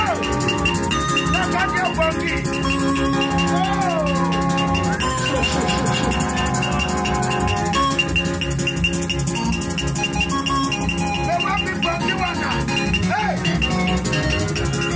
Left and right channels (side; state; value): both; identical; correlation 1.00